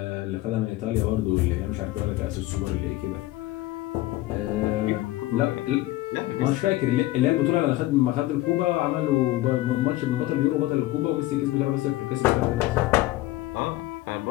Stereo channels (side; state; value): right; quieter; 17.0 dB